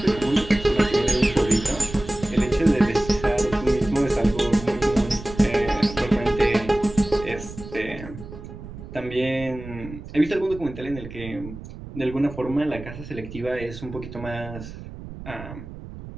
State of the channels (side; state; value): right; noise; rumble, 13 dB below the sound